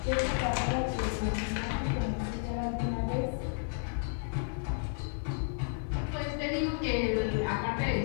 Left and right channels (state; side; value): silent; right; digital silence